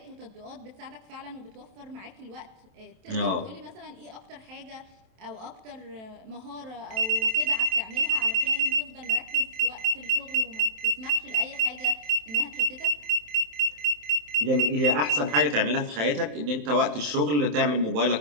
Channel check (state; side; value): late; left; 27 ms